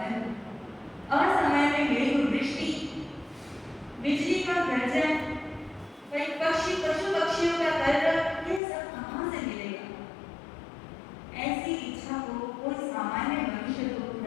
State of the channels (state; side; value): drops out; right; at 8.6 s